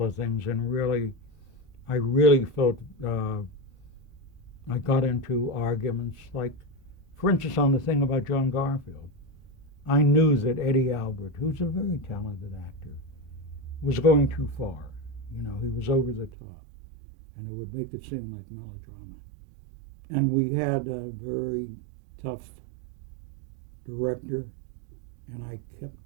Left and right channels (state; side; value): drops out; left; at 16.3 s